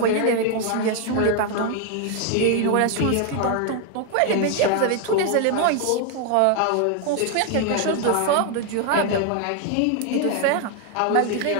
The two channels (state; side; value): different; both; correlation 0.01